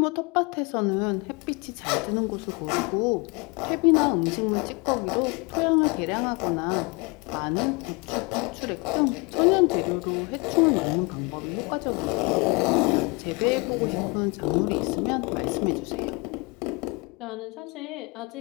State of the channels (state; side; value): quieter; right; 28.7 dB